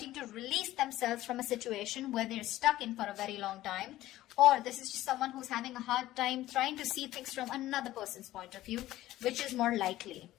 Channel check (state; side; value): quieter; right; 15.3 dB